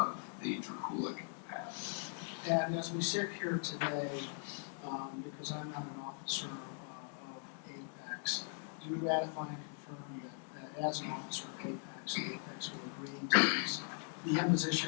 the Drakulic pad. And as we sit here today, because I'm not an officer of Apex, do you ratify and confirm that as an officer of Apex, Apex will agree to these the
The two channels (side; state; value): right; silent; 51 dB below the other